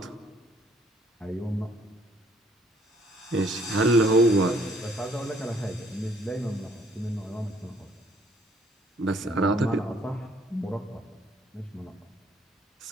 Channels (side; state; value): both; normal; correlation 0.63